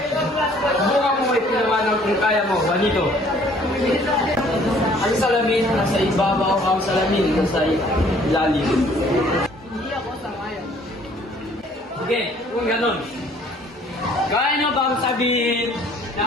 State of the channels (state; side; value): normal; both; correlation 0.58